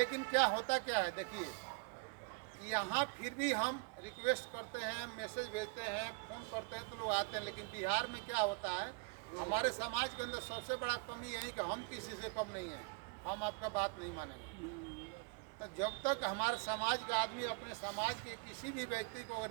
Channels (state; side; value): quieter; left; 33.3 dB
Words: क्या होता क्या है, देखिए यहाँ फिर भी हम रिक्वेस्ट करते हैं, मैसेज भेजते हैं, फ़ोन करते हैं तो लोग आते हैं। लेकिन बिहार में क्या होता है, हमारे समाज के अंदर सबसे बड़ा कमी यही कि हम किसी से कम नहीं हैं, हम आपका बात नहीं मानेंगे। तो जब तक हमारे समाज का आदमी अपने समाज के किसी भी व्यक्ति को